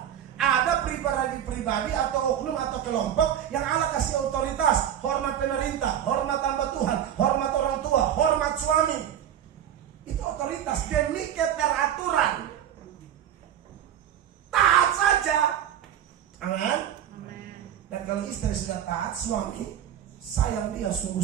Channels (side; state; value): left; quieter; 10.2 dB